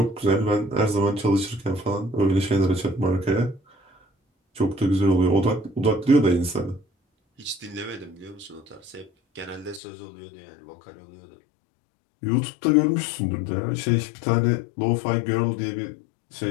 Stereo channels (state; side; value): drops out; right; at 9.8 s